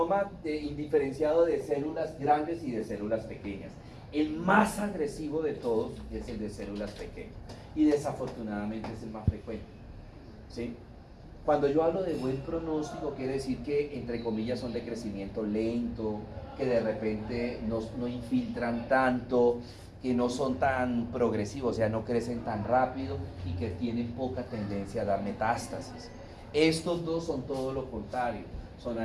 indiferenciado de células grandes y de células pequeñas. El más agresivo de todos es el de células pequeñas y desafortunadamente es el más frecuente, ¿sí? Cuando yo hablo de buen pronóstico quiere decir que entre comillas son de crecimiento lento, que de repente no infiltran tanto, que no son tan progresivos, o sea, no crecen tan rápido y que tienen poca tendencia a dar metástasis. Estos 2 son todo lo contrario, son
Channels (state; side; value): identical; both; correlation 1.00